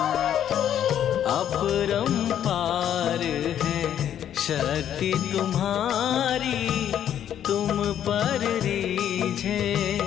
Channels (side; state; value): right; quieter; 10.1 dB